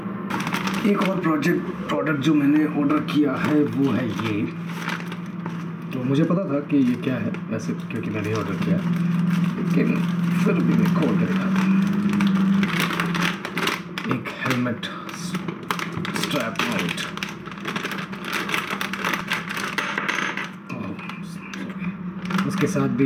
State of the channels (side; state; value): both; identical; correlation 1.00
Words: एक और प्रोडक्ट जो मैंने ऑर्डर किया है वो है ये। तो मुझे पता था कि ये क्या है वैसे, क्योंकि मैंने ही ऑर्डर किया, लेकिन फिर भी मैं खोल कर दिखाता हूँ। एक हेलमेट स्ट्रैप माउंट, उसके साथ भी